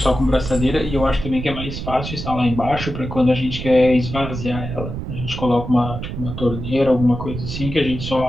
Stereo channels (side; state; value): right; noise; rumble, 7 dB below the sound